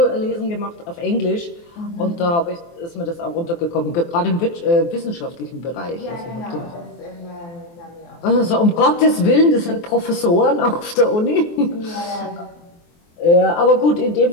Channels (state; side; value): late; right; 23 ms